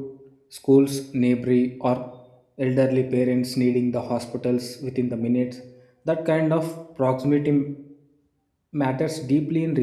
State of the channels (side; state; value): both; identical; correlation 1.00